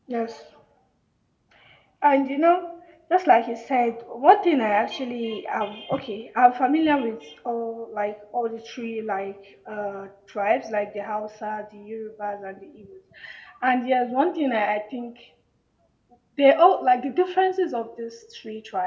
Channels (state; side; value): identical; both; correlation 1.00